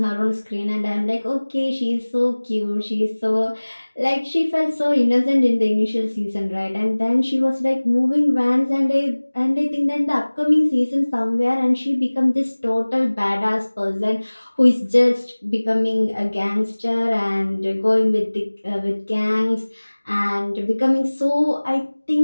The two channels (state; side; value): inverted; both; correlation -1.00